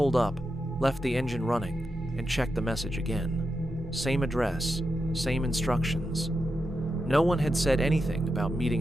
up, left the engine running, and checked the message again. Same address, same instructions. No one had said anything about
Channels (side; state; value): both; normal; correlation 0.88